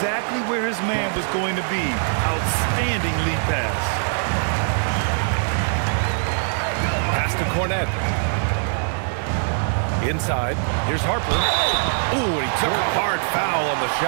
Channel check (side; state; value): left; silent; 58 dB below the other